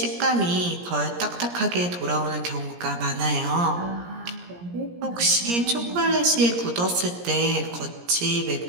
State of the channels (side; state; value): left; late; 17 ms